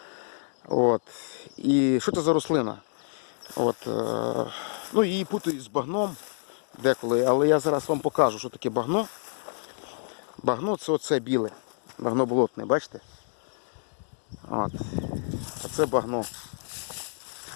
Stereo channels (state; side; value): silent; right; 59 dB below the other